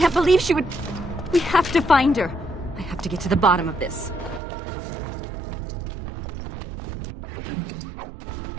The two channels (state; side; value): drops out; left; at 4.4 s